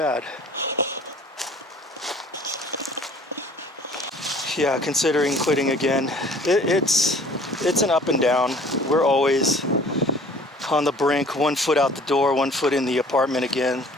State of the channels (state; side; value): normal; both; correlation 0.51